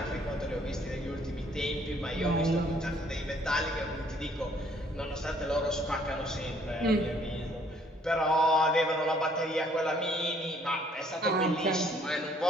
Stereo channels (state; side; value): normal; both; correlation 0.63